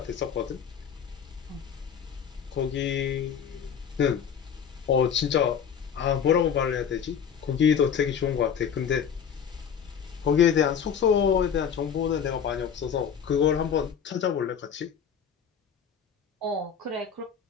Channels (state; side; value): quieter; right; 7.6 dB